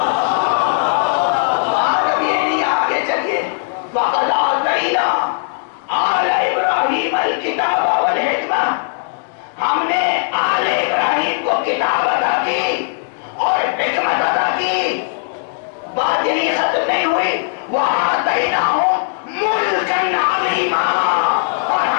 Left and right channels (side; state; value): right; silent; digital silence